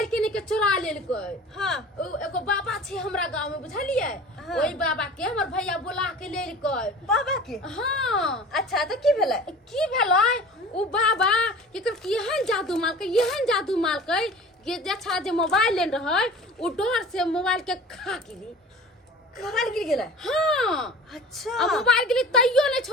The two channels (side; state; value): both; normal; correlation 0.40